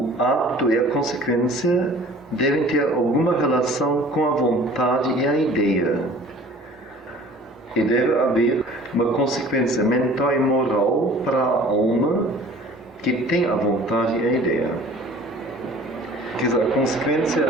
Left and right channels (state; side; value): normal; both; correlation 0.47